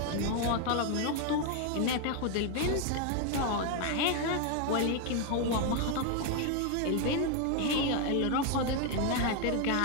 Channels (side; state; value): both; different; correlation 0.01